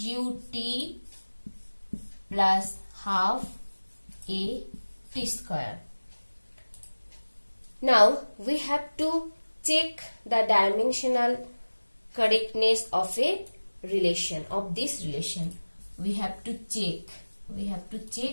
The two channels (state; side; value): inverted; both; correlation -1.00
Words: plus half a t square. Now we have to check the dimensional correctness of a relation, of this relation. We have to